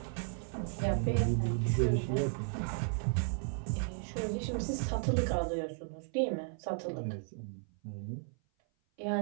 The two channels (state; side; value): silent; left; 55 dB below the other